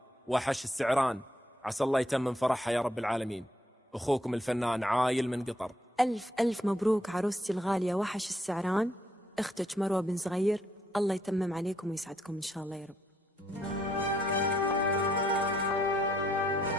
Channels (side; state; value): both; normal; correlation 0.72